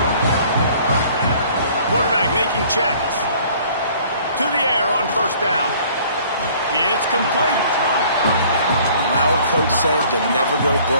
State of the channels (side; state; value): both; inverted; correlation -0.54